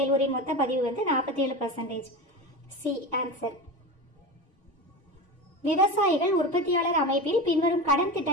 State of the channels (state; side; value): normal; both; correlation 0.26